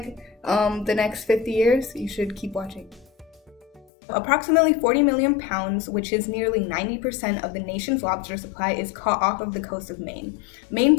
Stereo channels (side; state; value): right; drops out; at 3.9 s